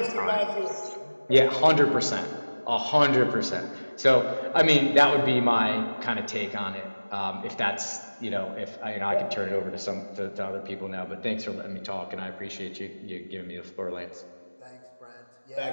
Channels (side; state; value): both; inverted; correlation -1.00